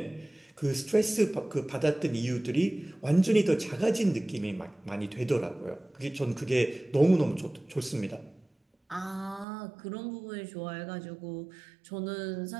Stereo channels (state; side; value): drops out; left; at 9.5 s